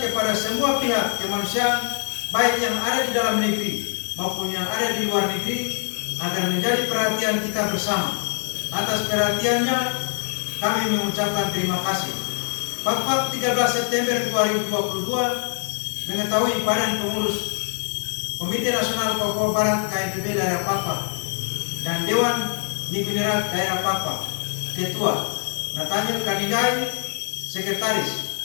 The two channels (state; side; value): silent; right; 58 dB below the other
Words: semua pihak kemanusiaan, baik yang ada di dalam negeri maupun yang ada di luar negeri, agar menjadi perhatian kita bersama. Atas perhatiannya, kami mengucapkan terima kasih. Pakpak 13 September 2022 mengetahui Badan Pengurus Komite Nasional Papua Barat KNPB daerah Pakpak dan Dewan Ningginerat daerah Pakpak, Ketua Nathaniel Kaninggai, Sekretaris